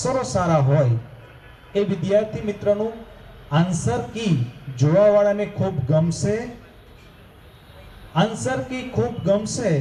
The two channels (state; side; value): identical; both; correlation 1.00